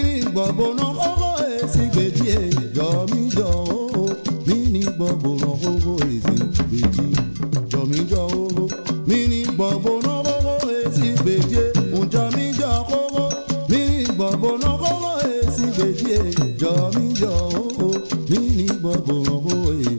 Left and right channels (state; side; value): inverted; both; correlation -1.00